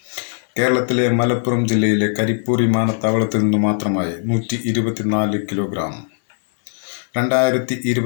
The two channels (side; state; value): right; silent; digital silence